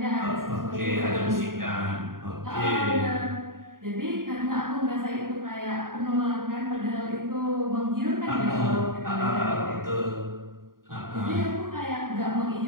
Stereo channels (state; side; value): late; left; 0.91 ms